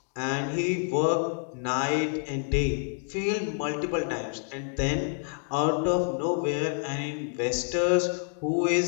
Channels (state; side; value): silent; right; 59 dB below the other